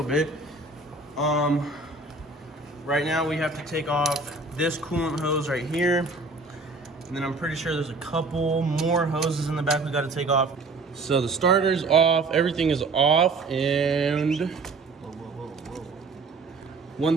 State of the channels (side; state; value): left; quieter; 3.6 dB